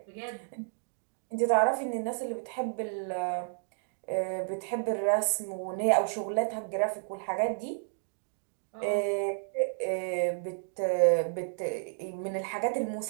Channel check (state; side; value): silent; left; digital silence